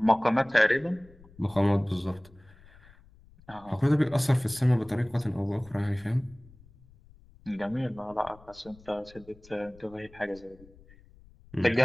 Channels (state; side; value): noise; left; rumble, 25 dB below the sound